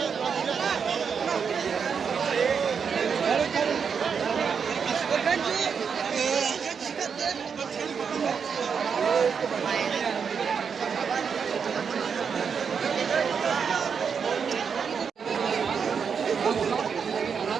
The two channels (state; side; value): quieter; left; 6.4 dB